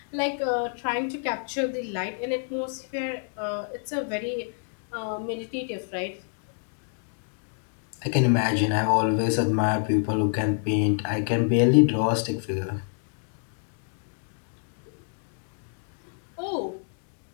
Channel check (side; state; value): right; silent; 60 dB below the other